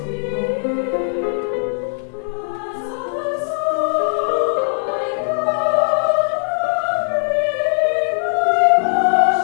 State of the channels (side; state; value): right; silent; 57 dB below the other